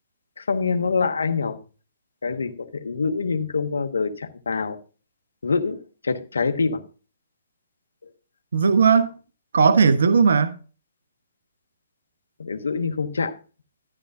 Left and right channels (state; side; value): inverted; both; correlation -0.79